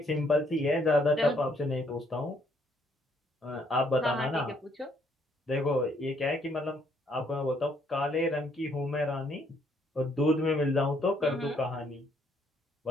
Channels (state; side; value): normal; both; correlation 0.68